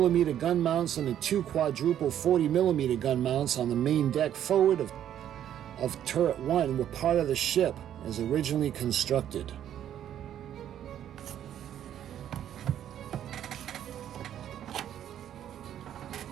gun mounts and the 2 quadruple 40mm gun mounts on the main deck forward of turret 1 were part of the ship as originally constructed.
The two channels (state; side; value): quieter; left; 10.5 dB